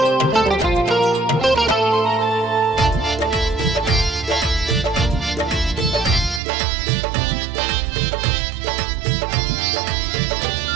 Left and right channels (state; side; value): drops out; left; at 6.4 s